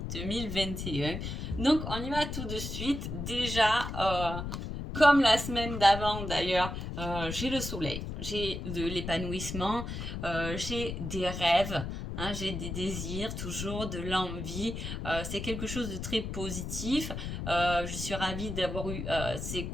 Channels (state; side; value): noise; left; rumble, 5 dB below the sound